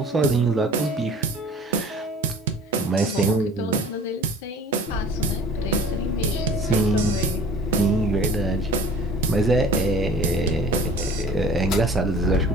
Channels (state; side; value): normal; both; correlation 0.47